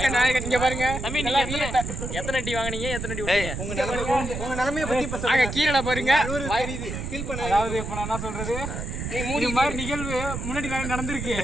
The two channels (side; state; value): right; noise; rumble, 5 dB below the sound